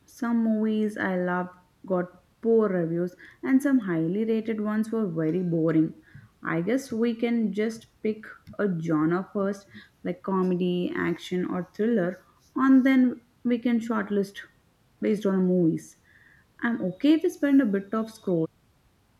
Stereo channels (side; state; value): both; identical; correlation 1.00